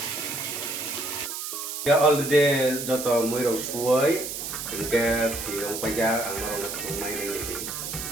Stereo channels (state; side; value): noise; right; hiss, 6 dB below the sound